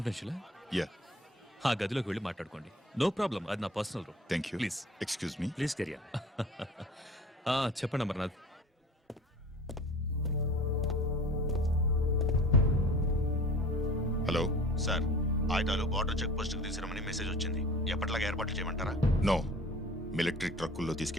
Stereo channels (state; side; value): normal; both; correlation 0.43